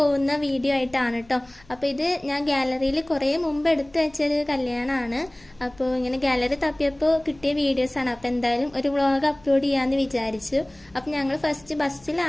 വീഡിയോ ആയിട്ടാണ് കേട്ടോ. അപ്പൊ ഇത് ഞാൻ ഗാലറിയിൽ കുറെ മുമ്പ് എടുത്തു വെച്ചൊരു കല്യാണമാണ്. അപ്പോൾ ഇങ്ങനെ ഗാലറി തപ്പിയപ്പോൾ കിട്ടിയ വീഡിയോസ് ആണ്. അപ്പൊ എന്തായാലും ഒരു വ്ളോഗ് അപ്ലോഡ് ചെയ്യാന്ന് വിചാരിച്ചു. അപ്പൊ ഞങ്ങൾ ഫസ്റ്റ്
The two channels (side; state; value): left; noise; rumble, 28 dB below the sound